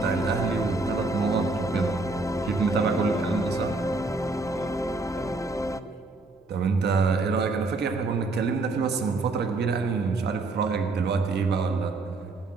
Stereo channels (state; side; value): quieter; left; 3.4 dB